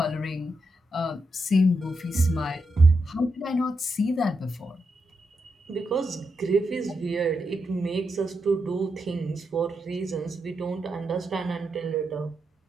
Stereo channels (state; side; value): normal; both; correlation 0.84